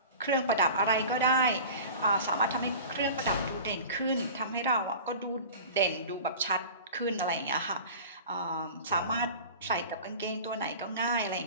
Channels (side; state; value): both; inverted; correlation -0.38